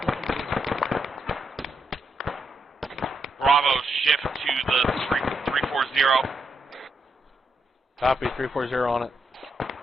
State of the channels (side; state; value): both; normal; correlation 0.81